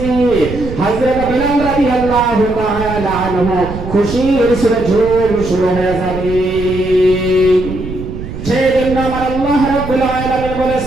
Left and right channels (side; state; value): right; noise; rumble, 9 dB below the sound